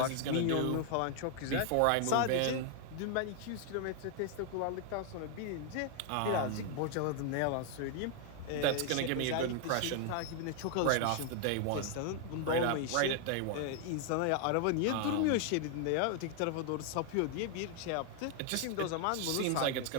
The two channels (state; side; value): different; both; correlation 0.00